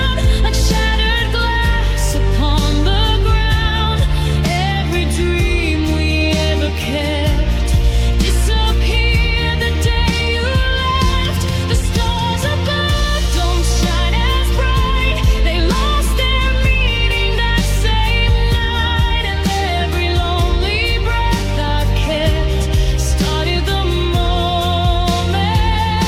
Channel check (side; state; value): both; identical; correlation 1.00